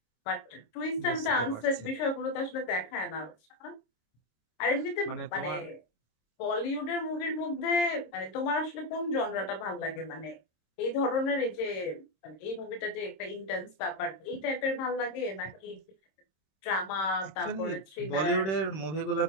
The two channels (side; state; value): right; late; 26 ms